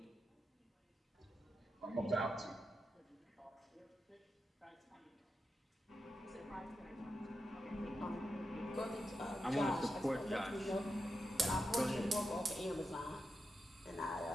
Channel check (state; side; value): normal; both; correlation 0.88